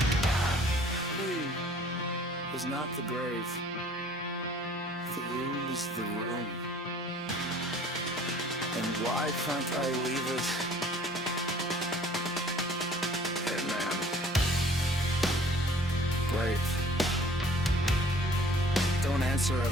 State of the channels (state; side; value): normal; both; correlation 0.53